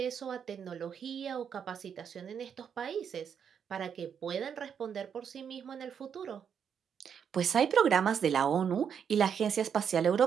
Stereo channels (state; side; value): quieter; left; 7.6 dB